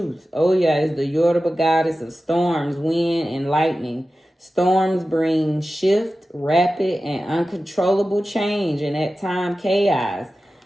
Oya is the Yoruba goddess of storms, wind, and lightning. Storms bring shift, rapid, and uncontrollable change, and at times chaos.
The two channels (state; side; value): normal; both; correlation 0.94